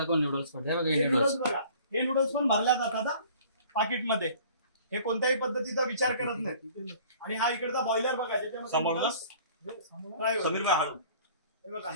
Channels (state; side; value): inverted; both; correlation -0.51